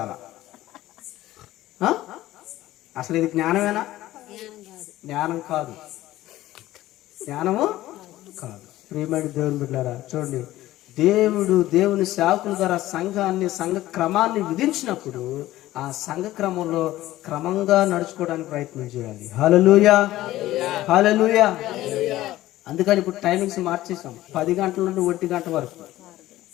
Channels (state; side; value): quieter; right; 15.6 dB